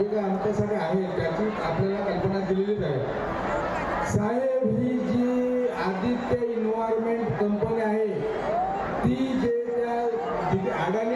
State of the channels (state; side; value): identical; both; correlation 1.00